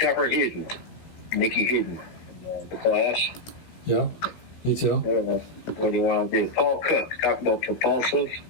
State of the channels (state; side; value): late; right; 16 ms